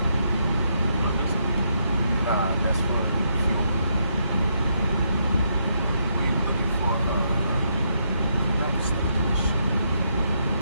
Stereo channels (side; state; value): both; inverted; correlation -0.77